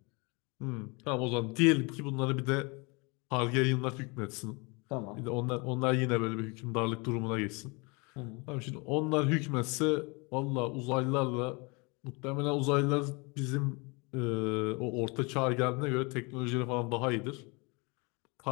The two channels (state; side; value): quieter; right; 29.3 dB